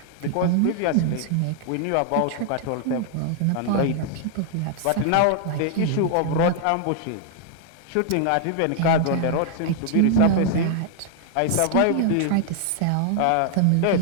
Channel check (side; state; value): both; different; correlation 0.00